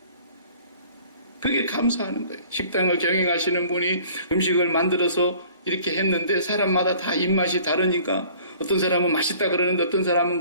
그게 감사하는 거예요. 식당을 경영하시는 분이 음식을 만들어서 이렇게 했는데 사람마다 다 입맛이 다르니까 어떤 사람은 맛있다 그러는데 어떤 사람은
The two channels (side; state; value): both; inverted; correlation -0.51